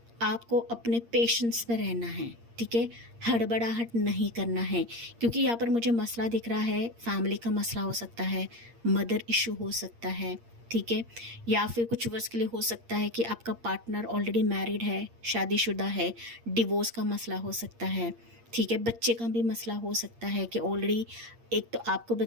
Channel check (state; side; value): late; left; 8.6 ms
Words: आपको अपने पेशेंस पे रहना है, ठीक है? हड़बड़ाहट नहीं करना है, क्योंकि यहाँ पर मुझे मसला दिख रहा है, फैमिली का मसला हो सकता है, मदर इशू हो सकता है, ठीक है? या फिर कुछ वर्ष के लिए हो सकता है कि आपका पार्टनर ऑलरेडी मैरिड है, शादीशुदा है, डिवोर्स का मसला हो सकता है, ठीक है? बच्चे का भी मसला हो सकता है कि ऑलरेडी एक तो आपको